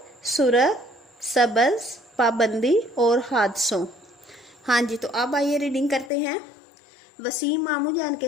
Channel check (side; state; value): right; drops out; at 6.1 s